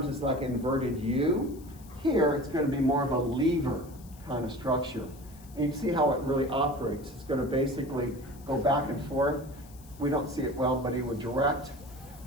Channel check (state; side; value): noise; left; hiss, 24 dB below the sound